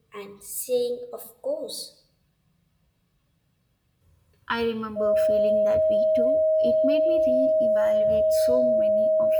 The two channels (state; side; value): identical; both; correlation 1.00